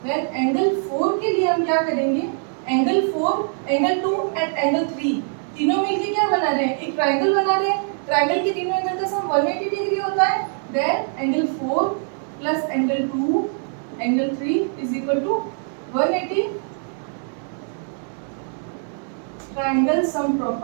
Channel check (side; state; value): left; silent; 56 dB below the other